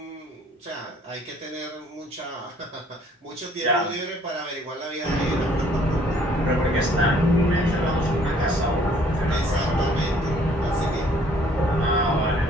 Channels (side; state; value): both; normal; correlation 0.60